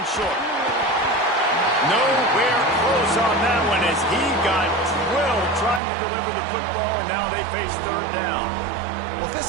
short. Nowhere close on that one as he got drilled trying to deliver the football, and now they face 3rd down. Well, if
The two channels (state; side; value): drops out; left; at 5.8 s